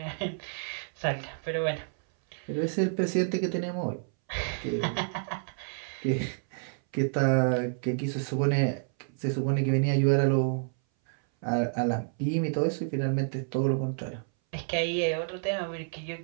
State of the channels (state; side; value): silent; left; 58 dB below the other